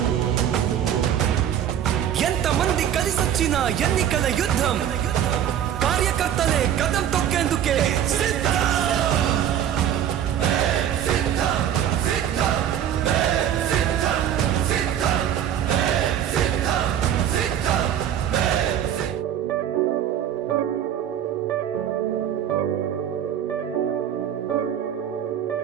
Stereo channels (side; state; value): left; quieter; 10.0 dB